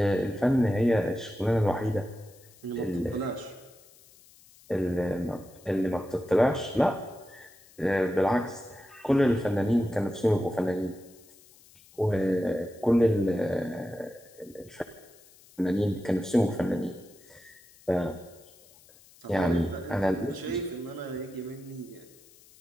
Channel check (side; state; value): left; noise; hiss, 26 dB below the sound